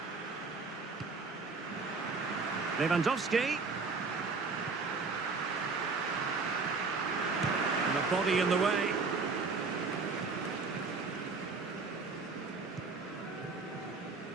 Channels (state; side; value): quieter; left; 4.3 dB